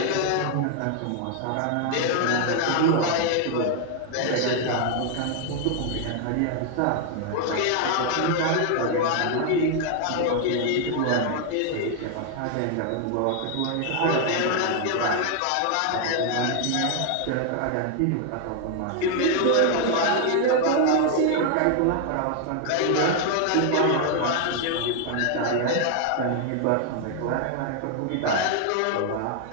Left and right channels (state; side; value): different; both; correlation 0.00